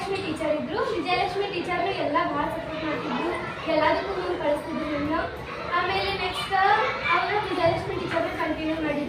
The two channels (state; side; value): identical; both; correlation 1.00